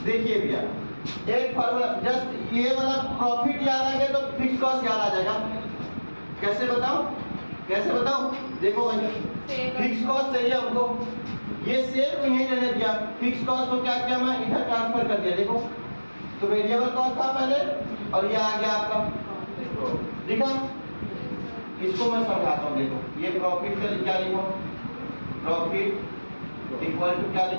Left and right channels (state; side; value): inverted; both; correlation -1.00